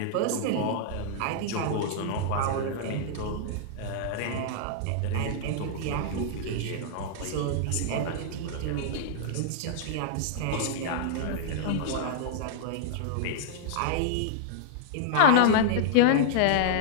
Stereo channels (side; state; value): both; different; correlation -0.01